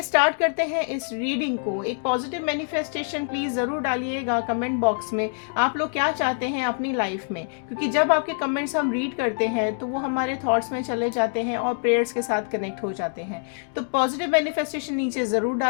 स्टार्ट करते हैं इस रीडिंग को। एक पॉजिटिव मैनिफेस्टेशन प्लीज़ ज़रूर डालिएगा कमेंट बॉक्स में, आप लोग क्या चाहते हैं अपनी लाइफ में, क्योंकि जब आपके कमेंट्स हम रीड करते हैं तो वो हमारे थॉट्स में चले जाते हैं और प्रेयर्स के साथ कनेक्ट हो जाते हैं। तो पॉजिटिव मैनिफेस्टेशन नीचे ज़रूर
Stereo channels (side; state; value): right; silent; 62 dB below the other